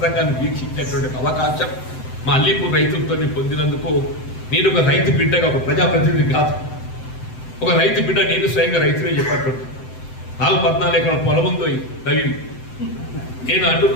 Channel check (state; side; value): late; right; 7.8 ms